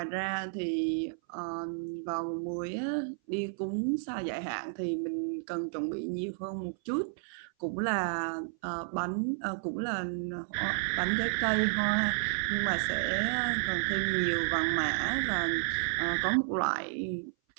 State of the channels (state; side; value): silent; left; 57 dB below the other